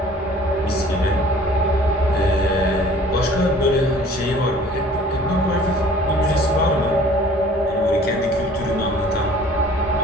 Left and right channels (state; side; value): normal; both; correlation 0.51